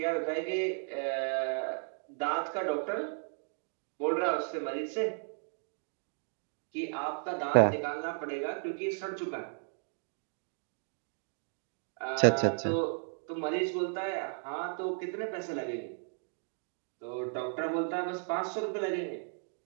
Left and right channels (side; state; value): left; silent; 55 dB below the other